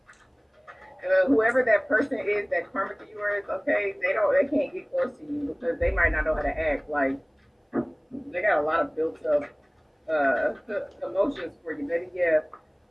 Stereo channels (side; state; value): both; identical; correlation 1.00